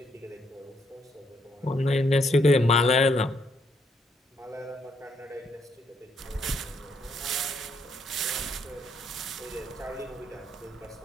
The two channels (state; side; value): normal; both; correlation 0.73